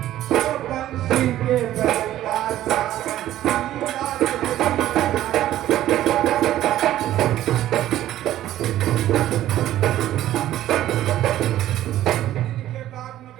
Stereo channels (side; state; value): left; quieter; 13.3 dB